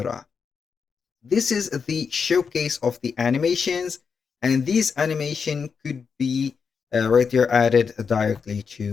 This is the showcase of the animations, and these animation could be right there added directly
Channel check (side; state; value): right; quieter; 5.9 dB